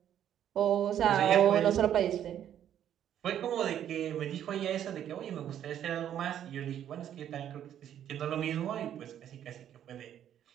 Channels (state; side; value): quieter; left; 10.3 dB